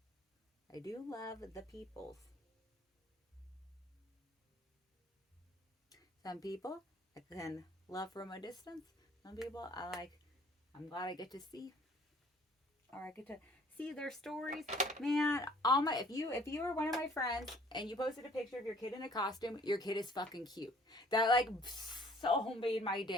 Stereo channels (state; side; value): normal; both; correlation 0.56